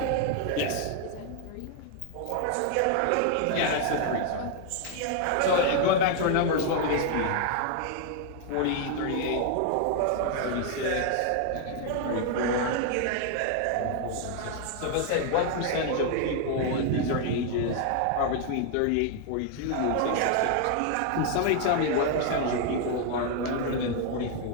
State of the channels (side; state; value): both; different; correlation 0.00